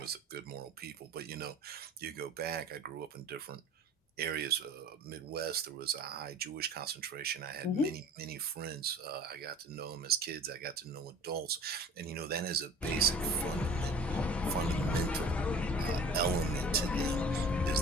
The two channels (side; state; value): both; normal; correlation 0.45